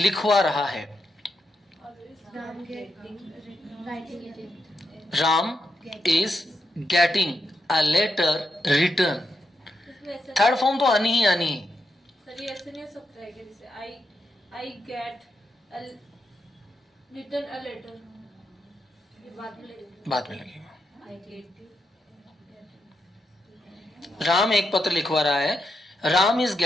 रहा है। Ram is getting a letter written. Third form तो आनी ही आनी है। सर ये ऐसे नहीं हो सकता है कि जैसे I get written a letter, ये बाद में लगेगा। राम एक पत्र लिखवा रहा है। Ram is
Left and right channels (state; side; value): normal; both; correlation 0.84